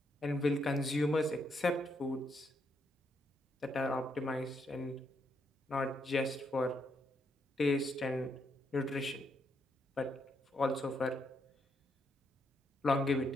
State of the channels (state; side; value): normal; both; correlation 0.77